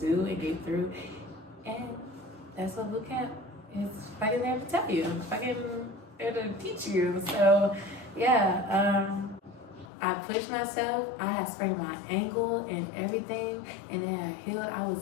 and get through. And that's what bootcamp is fucking there to tell you. Fucking there to teach you. So yeah, I pushed myself. I had sprained my ankle and everything, and then I healed. I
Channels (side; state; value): right; drops out; at 9.9 s